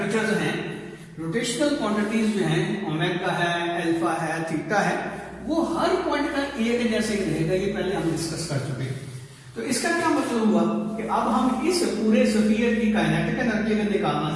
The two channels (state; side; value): identical; both; correlation 1.00